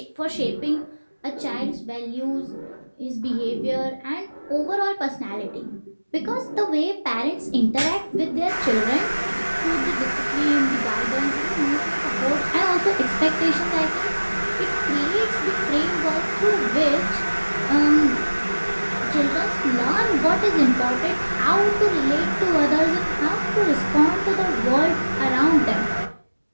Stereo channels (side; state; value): both; inverted; correlation -1.00